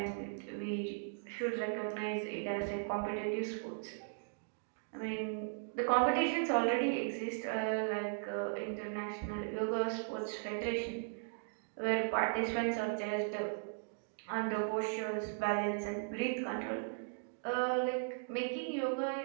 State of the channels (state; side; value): silent; left; digital silence